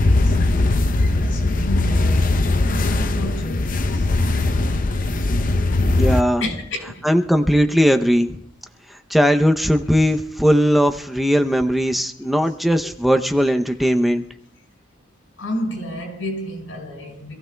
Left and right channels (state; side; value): normal; both; correlation 0.91